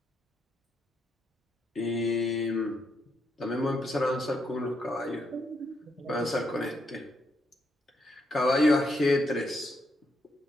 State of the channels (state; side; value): normal; both; correlation 0.79